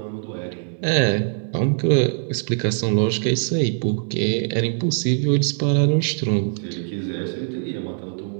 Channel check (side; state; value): left; silent; digital silence